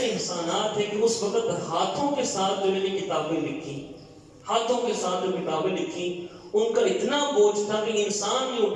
احسانات ہیں کہ اس وقت ہاتھوں کے ساتھ جو میں نے کتابیں لکھی, ہاتھوں کے ساتھ جو کتابیں لکھی, ان کا اتنا بوجھ تھا کہ انسان نہیں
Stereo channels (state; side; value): identical; both; correlation 1.00